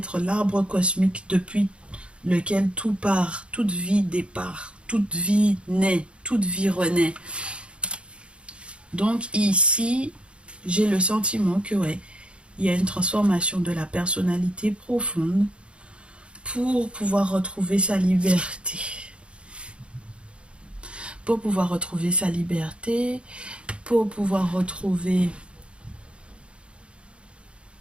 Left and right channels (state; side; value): late; left; 0.058 ms